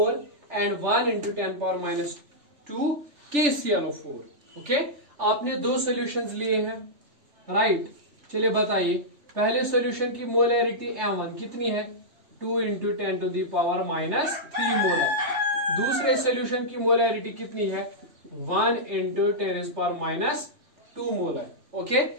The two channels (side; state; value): left; late; 3.3 ms